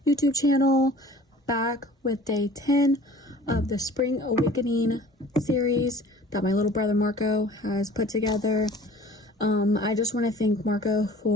YouTube channel, back with day 10 of the Spring Awakening series that my little brother Marco has put together. I just want to thank Marco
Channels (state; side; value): normal; both; correlation 0.47